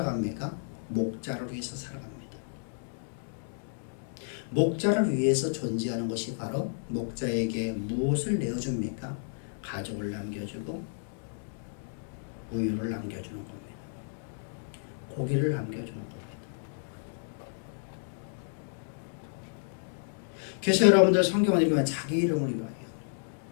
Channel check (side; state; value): right; silent; digital silence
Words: 목자를 위해서 살아갑니다. 목자를 위해서 존재하는 것이 바로 목자에게 무엇을 내어줍니까? 가족을 남겨주고 우유를 남겨주는 겁니다. 고기를 남겨주는 겁니다. 그래서 여러분들 성경을 읽으면 자기 이름을 위하여